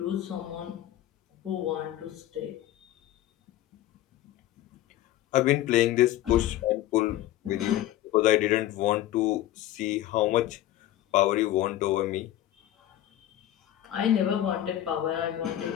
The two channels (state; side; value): quieter; right; 13.5 dB